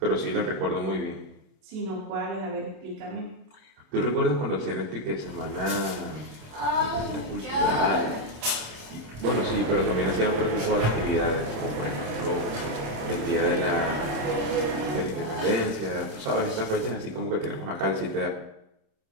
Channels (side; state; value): left; late; 27 ms